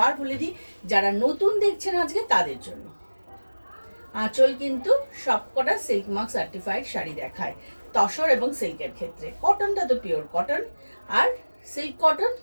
বলে দিই, যারা নতুন দেখছেন আজকে তাদের জন্য। আঁচল কিন্তু সবকটা সিল্ক মার্ক সার্টিফাইড শাড়ি দেখায় তসর এবং সিল্কের ক্ষেত্রে। কটনটা তো পিওর কটন, আর silk cotton,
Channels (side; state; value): both; inverted; correlation -1.00